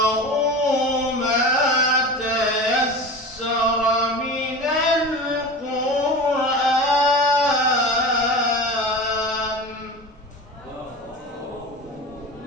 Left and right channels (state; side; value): normal; both; correlation 0.31